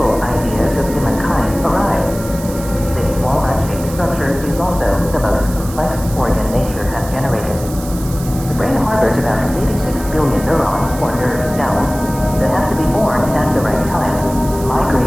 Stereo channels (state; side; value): noise; right; hiss, 15 dB below the sound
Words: ideas of humankind arise. This walnut-shaped structure is also the most complex organ nature has generated. The brain harbors about 86 billion neurons or nerve cells that have to be born at the right time,